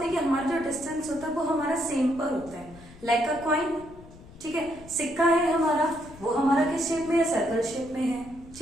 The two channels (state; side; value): noise; left; rumble, 20 dB below the sound